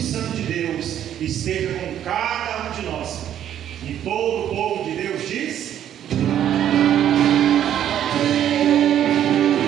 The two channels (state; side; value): quieter; left; 10.6 dB